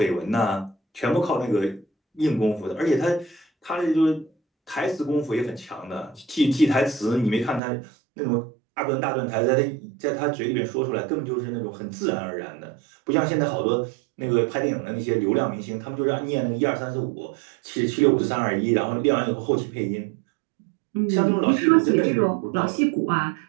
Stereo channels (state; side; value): drops out; left; at 7.6 s